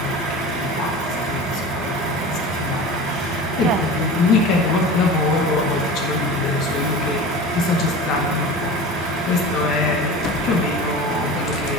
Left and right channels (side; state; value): both; normal; correlation 0.34